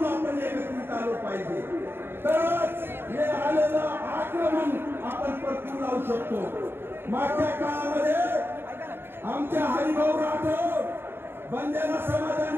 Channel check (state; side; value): late; left; 0.11 ms